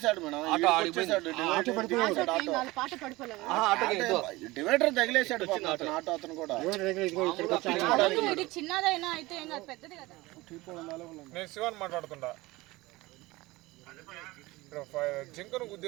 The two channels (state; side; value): quieter; left; 20.7 dB